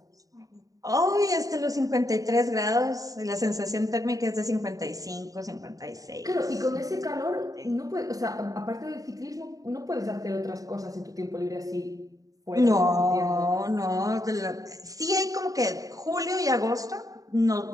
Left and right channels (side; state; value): left; late; 0.17 ms